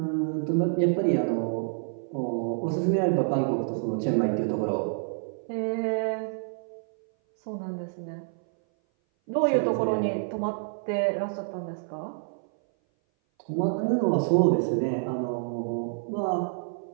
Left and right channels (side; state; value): left; silent; 57 dB below the other